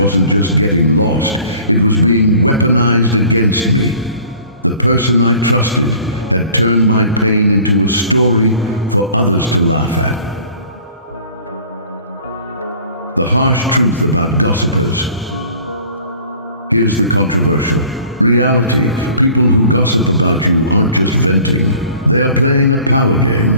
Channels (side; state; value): both; inverted; correlation -0.49